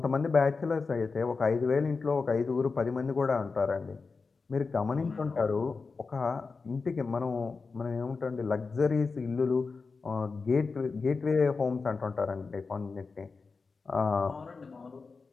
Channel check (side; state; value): right; quieter; 4.5 dB